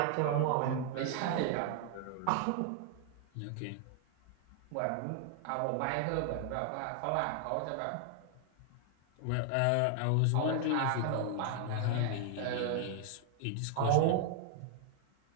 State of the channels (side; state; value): both; different; correlation 0.00